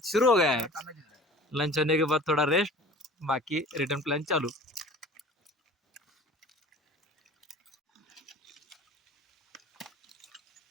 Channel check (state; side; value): normal; both; correlation 0.43